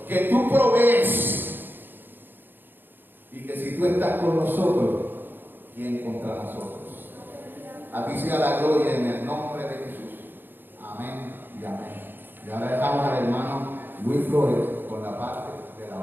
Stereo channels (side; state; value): left; late; 0.095 ms